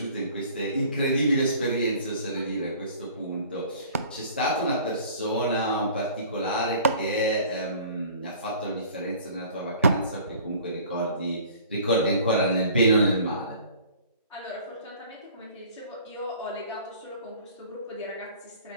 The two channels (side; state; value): both; inverted; correlation -0.48